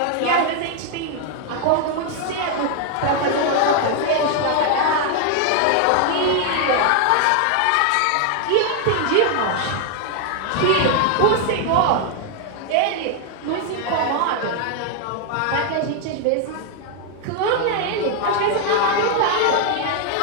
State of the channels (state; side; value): different; both; correlation 0.00